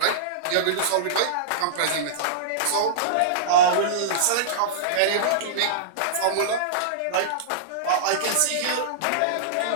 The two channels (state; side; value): different; both; correlation -0.03